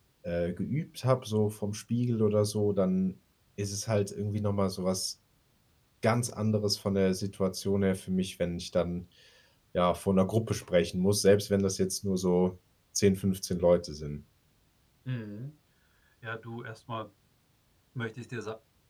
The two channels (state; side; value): identical; both; correlation 1.00